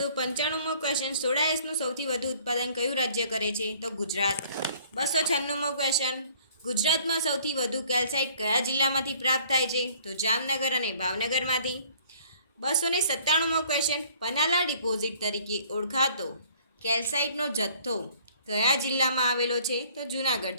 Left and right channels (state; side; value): inverted; both; correlation -0.56